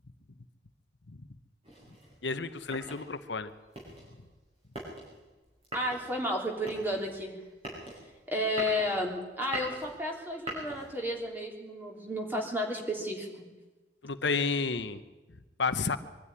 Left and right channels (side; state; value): both; normal; correlation 0.28